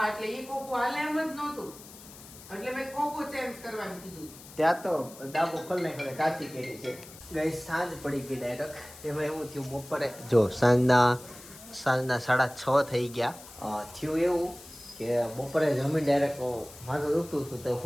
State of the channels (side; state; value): left; noise; hiss, 18 dB below the sound